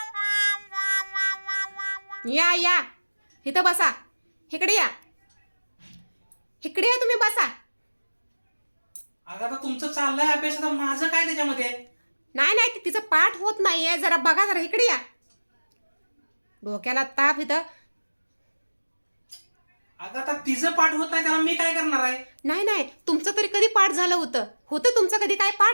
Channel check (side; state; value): both; inverted; correlation -1.00